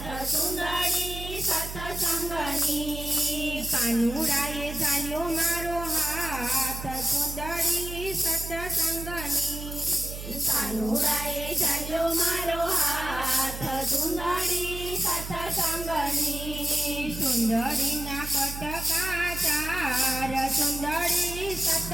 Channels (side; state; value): right; noise; hum, 9 dB below the sound